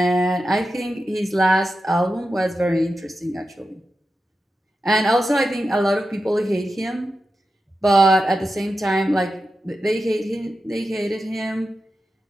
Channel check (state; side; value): normal; both; correlation 0.91